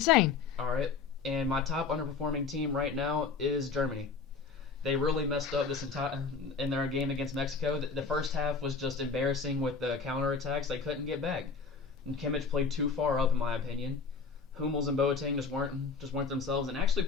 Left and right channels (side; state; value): right; quieter; 4.9 dB